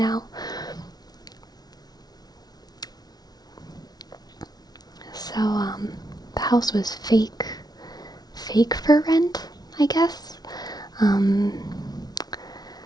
So, the house was fake fake for rent, I guess. And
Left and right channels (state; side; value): late; right; 0.19 ms